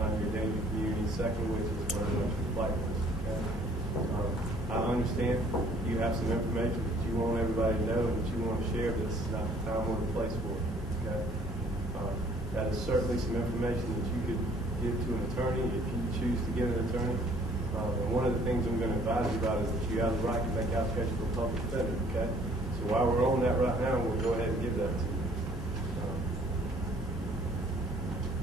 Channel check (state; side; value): normal; both; correlation 0.58